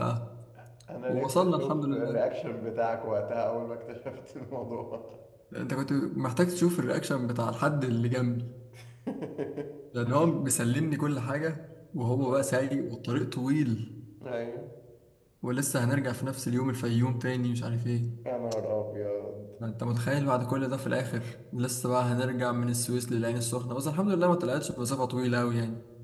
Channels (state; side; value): identical; both; correlation 1.00